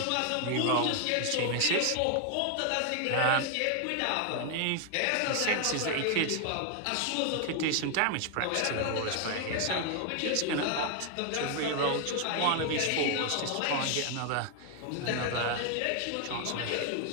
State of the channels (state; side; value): different; both; correlation 0.00